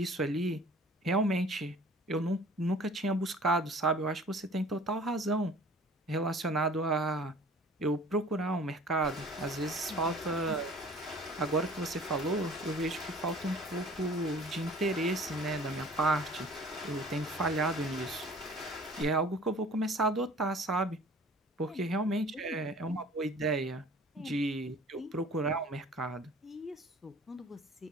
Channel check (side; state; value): both; normal; correlation 0.48